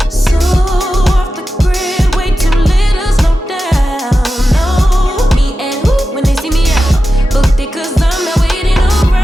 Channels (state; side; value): normal; both; correlation 0.92